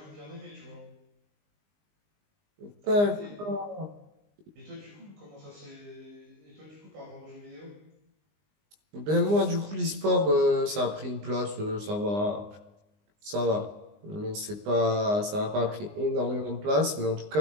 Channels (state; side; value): late; left; 19 ms